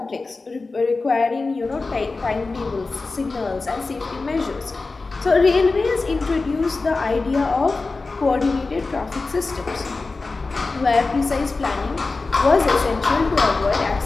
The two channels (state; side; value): quieter; right; 3.7 dB